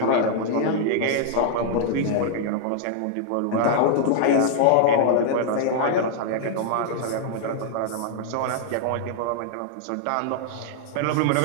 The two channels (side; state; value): both; different; correlation -0.01